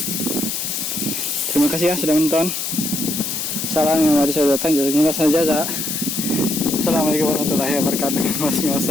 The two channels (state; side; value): noise; left; hiss, 3 dB below the sound